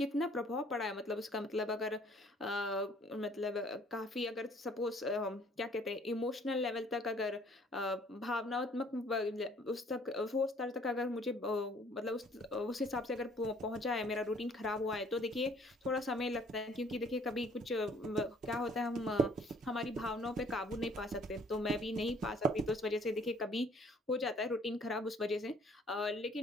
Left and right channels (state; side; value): normal; both; correlation 0.58